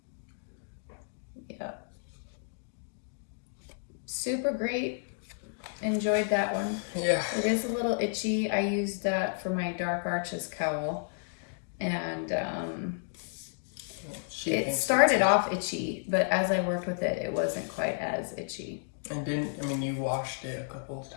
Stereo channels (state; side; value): silent; right; digital silence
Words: Yep. Super great. Enjoyed that one. Yeah. It is a little itchy. I used that for my Dark Arches cowl. And it started off itchy, but as I worked with it, it wasn't quite as itchy. And you washed it a couple of